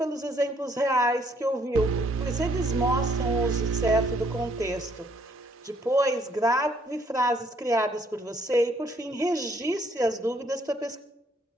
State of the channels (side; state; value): both; normal; correlation 0.67